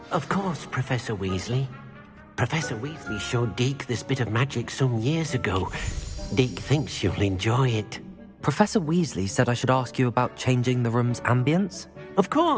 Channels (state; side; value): identical; both; correlation 1.00